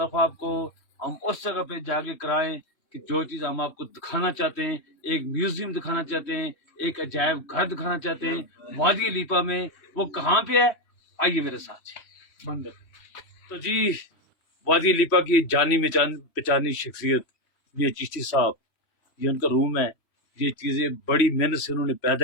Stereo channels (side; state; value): right; late; 3.0 ms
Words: آپ کو ہم اس جگہ پہ جا کے کرائیں کہ جو چیز ہم آپ کو دکھانا چاہتے ہیں، ایک میوزیم دکھانا چاہتے ہیں، ایک عجائب گھر دکھانا چاہتے ہیں وادی لیپا میں۔ وہ کہاں پہ ہے؟ آئیے میرے ساتھ بندر۔ تو جی، وادی لیپا کی جانی پہچانی شخصیت یہ چشتی صاحب، یہ ان کا روم ہے۔ یہ چیزیں بڑی محنت سے انہوں نے